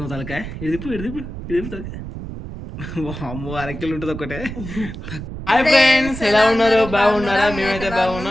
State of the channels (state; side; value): noise; right; rumble, 9 dB below the sound